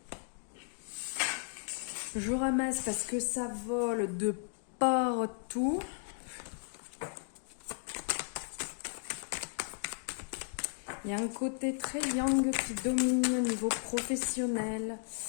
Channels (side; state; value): right; silent; 55 dB below the other